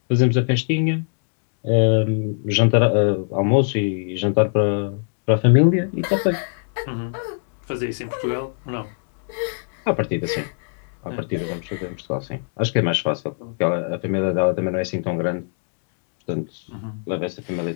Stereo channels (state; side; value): silent; right; digital silence